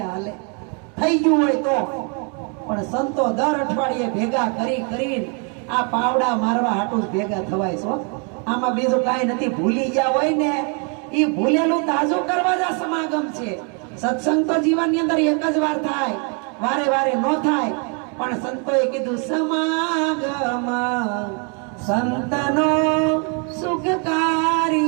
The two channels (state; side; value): quieter; left; 37.5 dB